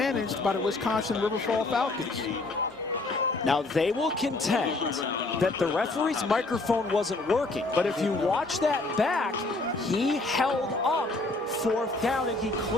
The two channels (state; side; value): quieter; right; 3.2 dB